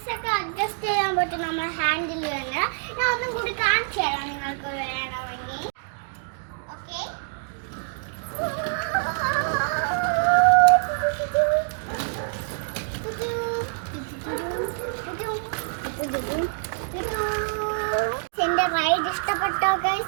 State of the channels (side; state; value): left; silent; digital silence